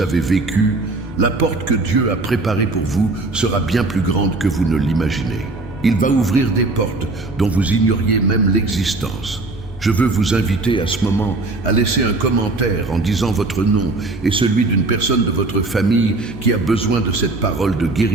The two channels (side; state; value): left; quieter; 3.1 dB